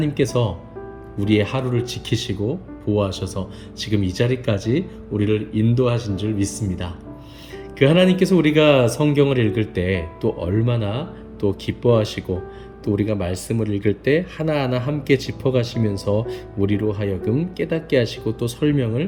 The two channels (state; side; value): identical; both; correlation 1.00